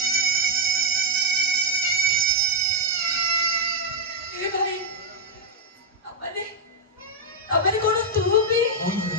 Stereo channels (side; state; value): both; normal; correlation -0.02